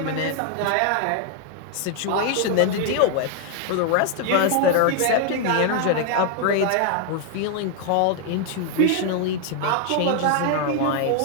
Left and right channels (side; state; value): both; different; correlation 0.00